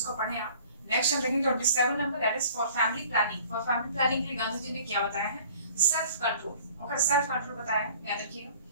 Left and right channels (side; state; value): both; inverted; correlation -0.51